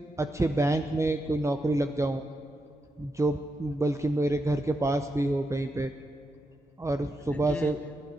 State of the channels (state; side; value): normal; both; correlation 0.85